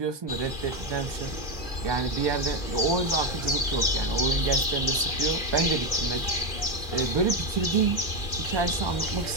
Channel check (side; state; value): right; late; 2.4 ms